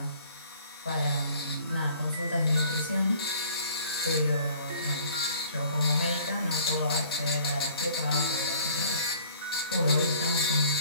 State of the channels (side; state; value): both; inverted; correlation -0.54